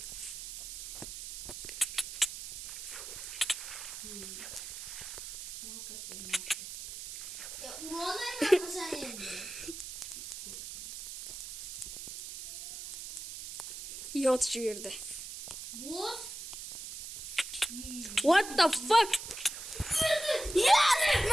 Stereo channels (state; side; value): noise; right; hiss, 9 dB below the sound